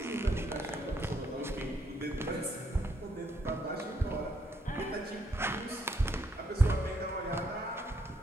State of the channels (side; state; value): both; normal; correlation 0.73